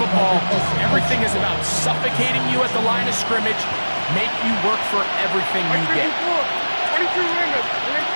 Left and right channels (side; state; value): both; inverted; correlation -1.00